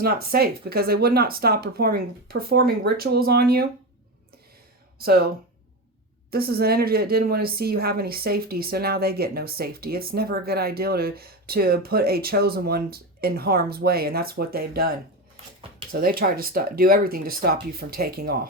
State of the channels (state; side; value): normal; both; correlation 0.19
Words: not safe because they would not stop performing rituals on you. So this is an energy that didn't want to see you have any safety, so now they get no safety. It's never a good idea to put a chosen one in harm's way, and that's what they've done. So they tried to do everything to stop you from taking